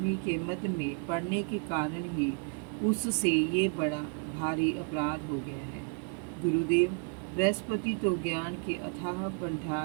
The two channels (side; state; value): left; quieter; 35.8 dB